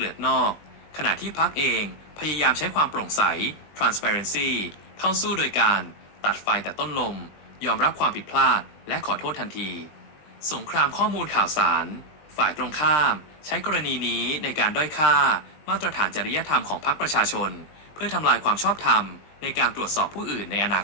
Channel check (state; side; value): late; right; 20 ms